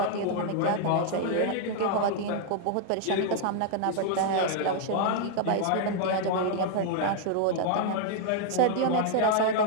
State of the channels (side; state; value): both; different; correlation -0.01